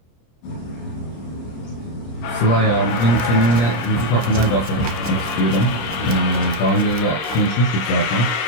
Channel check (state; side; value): late; right; 26 ms